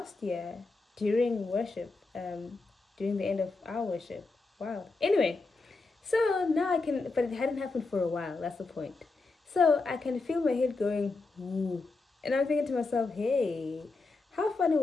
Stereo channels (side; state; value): right; quieter; 3.7 dB